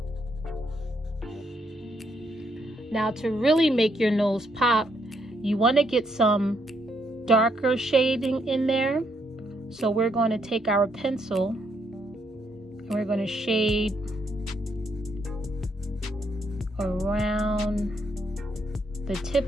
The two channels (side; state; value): both; normal; correlation 0.75